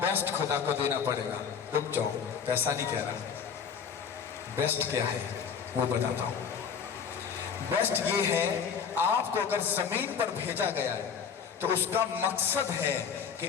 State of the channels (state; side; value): quieter; right; 6.8 dB